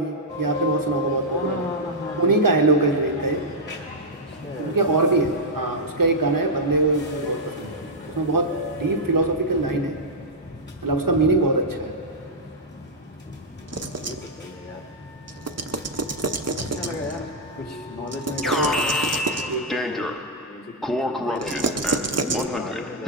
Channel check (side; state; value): both; normal; correlation -0.05